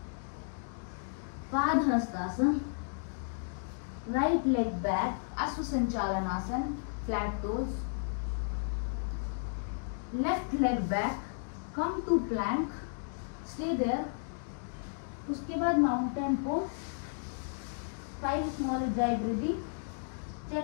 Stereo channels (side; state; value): right; silent; digital silence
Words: padahastasana, right leg back, ashwa sanchalanasana, flat toes, left leg back, come to plank, stay there. उसके बाद mountain pose, 5 small ujjayi breathing,